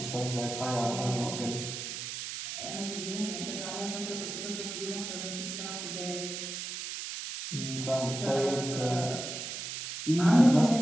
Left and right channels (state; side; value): noise; right; hiss, 6 dB below the sound